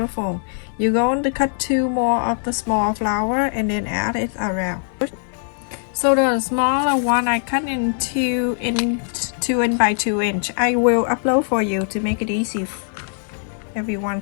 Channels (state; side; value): silent; right; digital silence